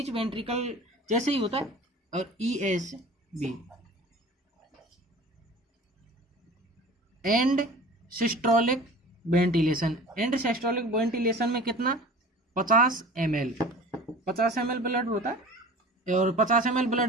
वेंट्रिकल जैसे ही होता है, और ESB and systolic ventilation. And systolic ventilation में कितना, 50 ml ब्लड होता है। और 50 ml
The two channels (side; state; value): both; normal; correlation 0.41